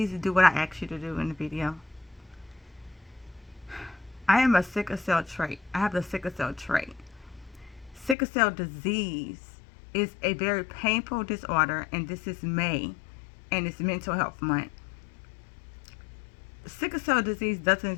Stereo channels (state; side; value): drops out; right; at 8.2 s